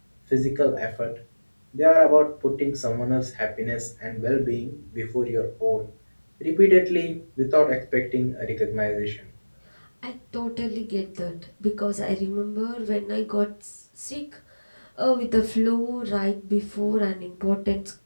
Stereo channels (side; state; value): both; inverted; correlation -1.00